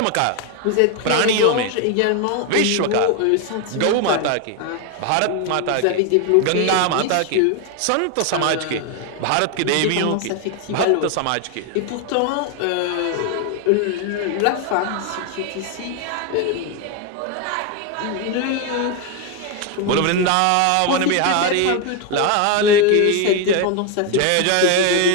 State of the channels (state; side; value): different; both; correlation 0.01